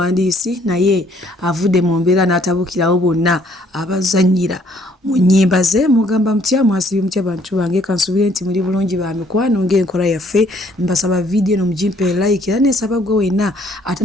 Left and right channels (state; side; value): normal; both; correlation 0.63